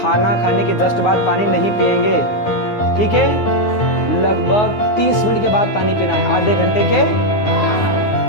खाने के जस्ट बाद पानी नहीं पिएंगे, ठीक है? लगभग 30 मिनट के बाद पानी पीना है, आधे घंटे के।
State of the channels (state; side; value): late; right; 9.5 ms